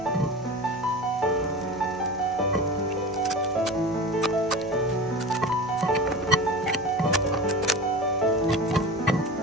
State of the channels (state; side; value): noise; right; rumble, 26 dB below the sound